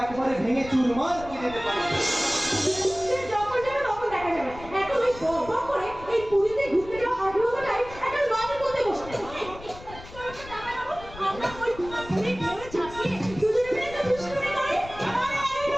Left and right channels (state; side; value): noise; left; rumble, 16 dB below the sound